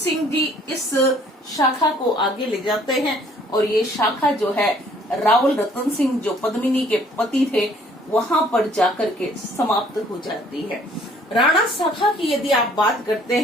जी इस शाखा को आगे ले जाते हैं और ये शाखा जो है रावल रतन सिंह जो पद्मिनी के पति थे वहां पर जाकर के समाप्त हो जाती है। राणा शाखा की यदि आप बात करते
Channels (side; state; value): both; normal; correlation 0.59